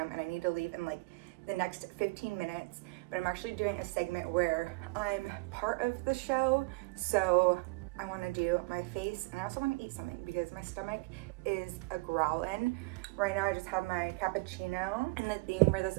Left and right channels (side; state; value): left; quieter; 26.5 dB